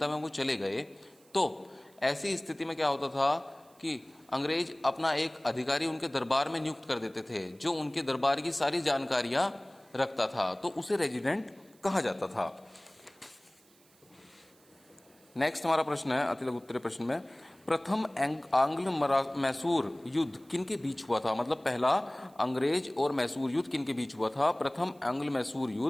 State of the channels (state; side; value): noise; right; hiss, 30 dB below the sound